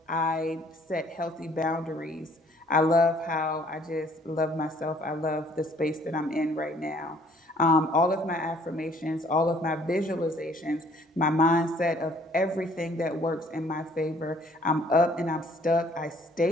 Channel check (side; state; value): both; normal; correlation 0.59